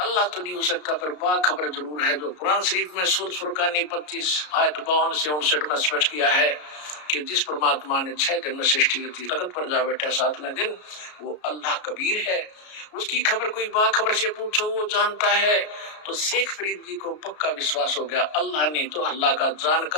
तो नहीं हो सकता, पर बाखबर जरूर है। जो कुरान शरीफ में सूरह फुरकान 25 आयत 52 से 59 में स्पष्ट किया है कि जिस परमात्मा ने 6 दिन में सृष्टि की, तख्त पर जा बैठा 7वें दिन, वो अल्लाह कबीर है। उसकी खबर कोई बाखबर से पूछो, वो जानता है। तो शेख फरीद जी को पक्का विश्वास हो गया, अल्लाह नहीं तो अल्लाह का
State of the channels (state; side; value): late; right; 33 ms